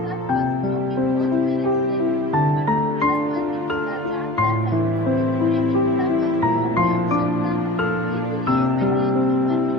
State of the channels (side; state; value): both; normal; correlation 0.40